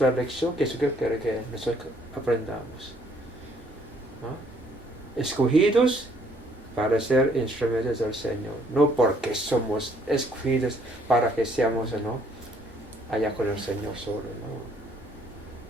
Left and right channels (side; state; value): both; normal; correlation 0.64